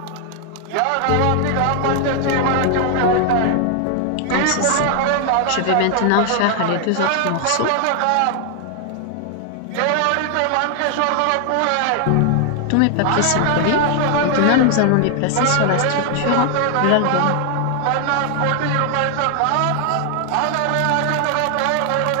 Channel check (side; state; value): both; different; correlation 0.00